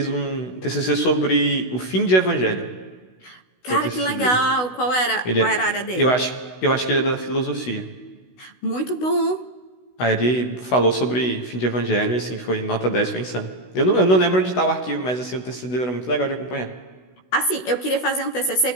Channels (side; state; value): right; late; 16 ms